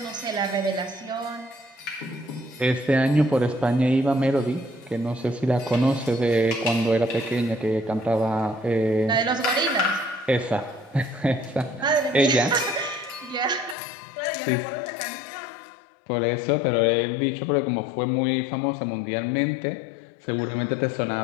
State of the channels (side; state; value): right; drops out; at 13.8 s